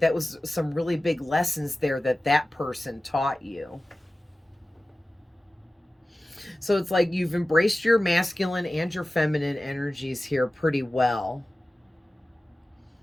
was some really big lessons there that person taught you. So it's like you've embraced your masculine and your feminine energies here pretty well.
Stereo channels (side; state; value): both; normal; correlation 0.96